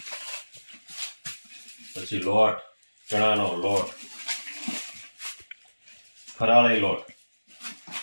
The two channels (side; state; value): both; inverted; correlation -1.00